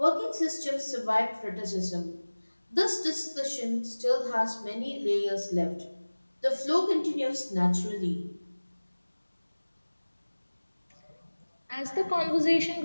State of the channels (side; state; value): both; inverted; correlation -1.00